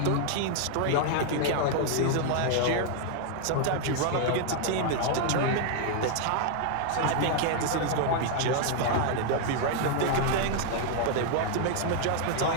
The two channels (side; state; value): both; different; correlation 0.00